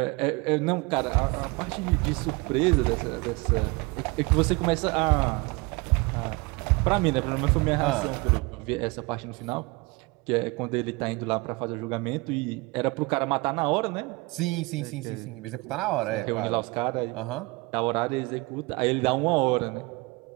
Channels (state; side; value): quieter; left; 25.2 dB